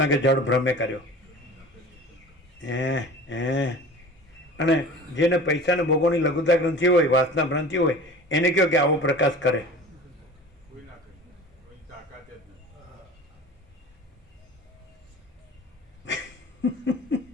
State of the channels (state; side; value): normal; both; correlation 0.39